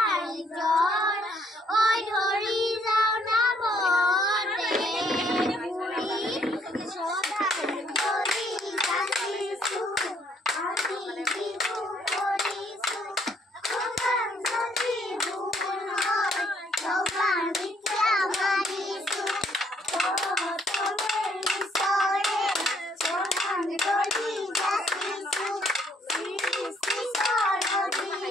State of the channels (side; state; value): both; normal; correlation 0.67